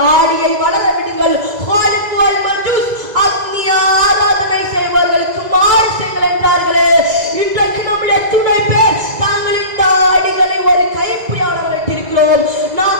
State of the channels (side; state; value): left; late; 2.0 ms